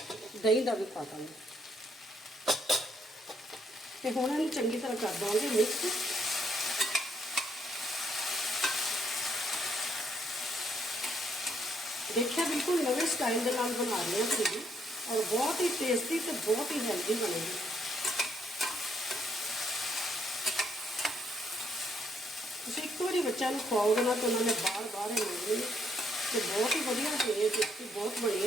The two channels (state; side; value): normal; both; correlation 0.72